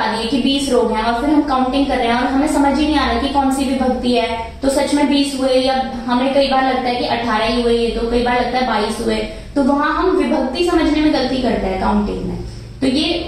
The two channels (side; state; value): both; identical; correlation 1.00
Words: दिए कि 20 रोग हैं, और फिर हम काउंटिंग कर रहे हैं और हमें समझ ही नहीं आ रहा कि कौन सी विभक्ति है, तो सच में 20 हुए या हमें कई बार लगता है कि 18 ही हुए, तो कई बार लगता है 22 हुए, तो वहां हम विभक्ति समझने में गलती करते हैं काउंटिंग में। तो ये